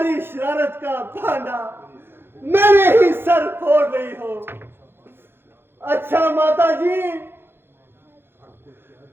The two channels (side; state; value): left; late; 0.11 ms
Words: शरारत का भांडा मेरे ही सर फोड़ रही हो। अच्छा माता जी,